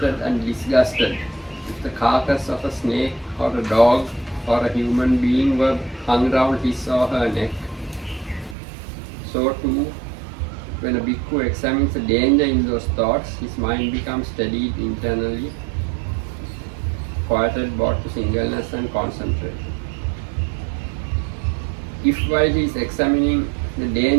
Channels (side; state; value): left; drops out; at 8.6 s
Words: and disgusted if the carcass of a snake or a dog or a human being were hung round his or her neck, so too, when a bhikkhu examines the danger in those thoughts, his mind becomes steadied internally, quieted both to singleness and concentration. If while he is examining the